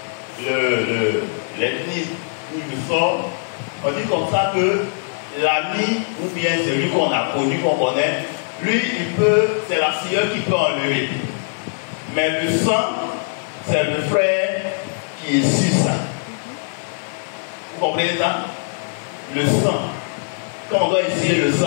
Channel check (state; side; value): silent; right; digital silence